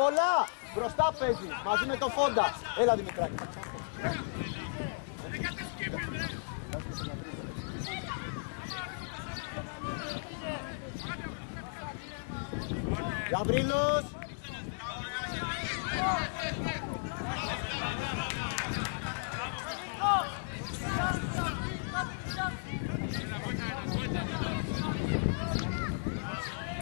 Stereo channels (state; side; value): silent; right; digital silence